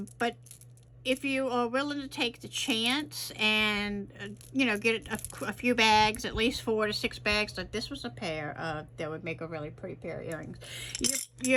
if you are willing to take the chance and, you know, get a few bags, at least 4 to 6 bags, like this was a pair that would make a really pretty pair of earrings.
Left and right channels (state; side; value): identical; both; correlation 1.00